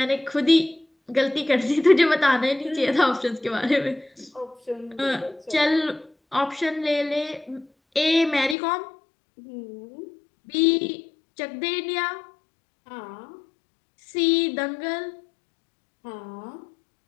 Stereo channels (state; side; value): drops out; right; at 8.6 s